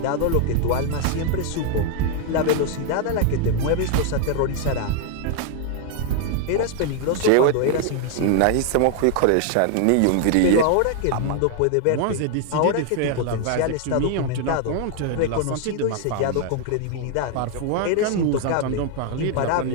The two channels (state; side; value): different; both; correlation 0.00